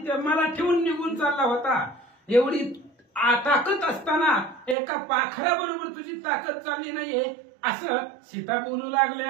मला ठेवून निघून चालला होता. एवढी ताकद असताना एका पाखरा बरोबर तुझी ताकद चालली नाहीये असं सीता बोलू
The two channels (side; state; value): left; drops out; at 4.8 s